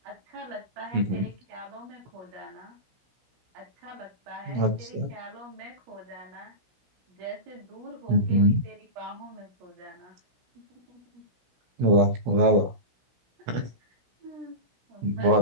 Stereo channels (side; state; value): left; late; 16 ms